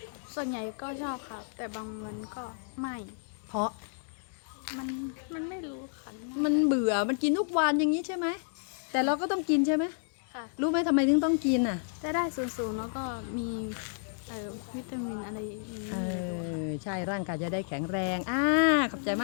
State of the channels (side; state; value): right; silent; digital silence